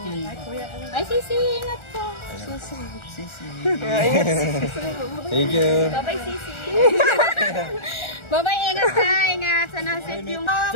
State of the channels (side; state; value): right; late; 1.4 ms